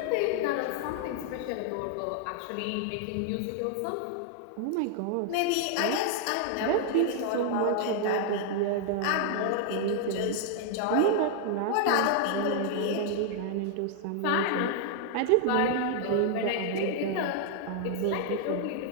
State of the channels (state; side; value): different; both; correlation 0.00